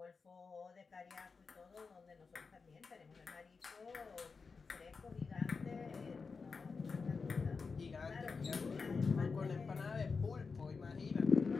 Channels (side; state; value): right; quieter; 4.8 dB